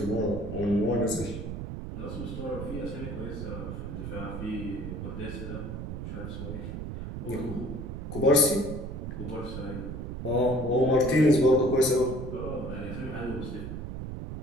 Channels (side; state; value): right; noise; rumble, 6 dB below the sound